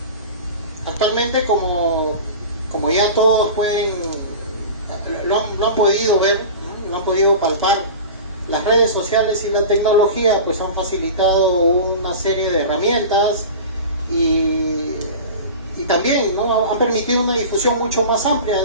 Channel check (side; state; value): both; inverted; correlation -0.33